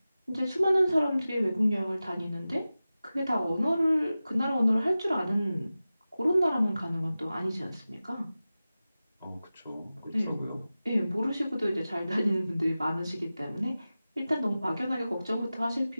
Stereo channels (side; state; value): both; inverted; correlation -0.95